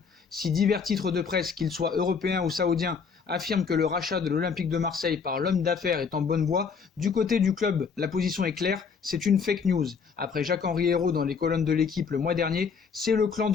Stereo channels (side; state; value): right; quieter; 5.8 dB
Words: Si divers titres de presse, qu'ils soient européens ou saoudiens, affirment que le rachat de l'Olympique de Marseille par l'homme d'affaires est en bonne voie, du côté du club, la position est claire, c'est une fake news. Après Jacques-Henri Hérault dans les colonnes de l'équipe le mois dernier, c'est le clan